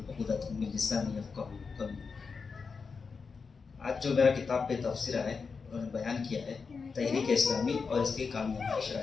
عقدۃ من لسانی یفقہوا قولی۔ آج جو میرا کتاب پہ تبصرہ ہے، انہوں نے بیان کیا ہے تحریک اسلامی اور اس کی کامیابی کی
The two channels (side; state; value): right; quieter; 5.1 dB